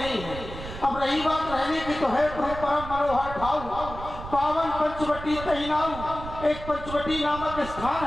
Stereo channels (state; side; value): noise; right; rumble, 11 dB below the sound